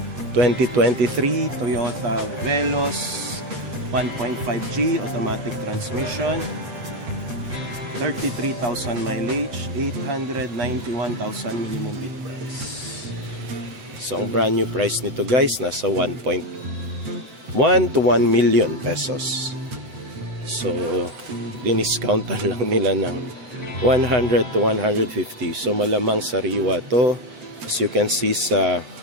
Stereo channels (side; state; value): left; late; 8.0 ms